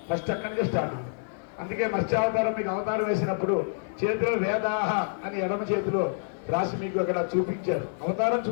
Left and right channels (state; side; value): silent; right; 60 dB below the other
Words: ఫస్ట్ అక్కడి నుంచి స్టార్ట్. అందుకే మత్స్యావతారం మీకు అవతారం వేసినప్పుడు చేతిలో వేదాహ అని ఎడమ చేతిలో రాసి మీకు అక్కడ చూపించారు. అవతారం